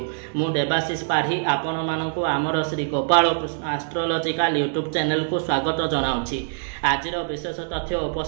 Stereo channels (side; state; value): left; silent; digital silence